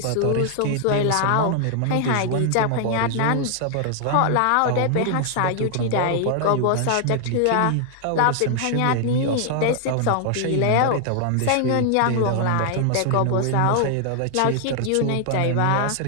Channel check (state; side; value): different; both; correlation 0.00